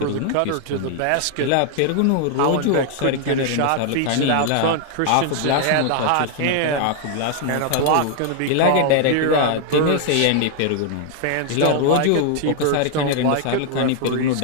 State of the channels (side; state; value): both; different; correlation 0.00